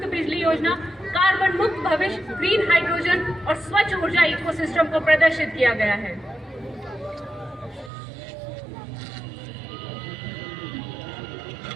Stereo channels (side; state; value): left; drops out; at 7.9 s